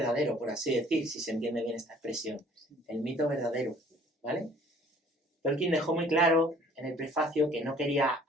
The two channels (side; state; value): both; normal; correlation 0.54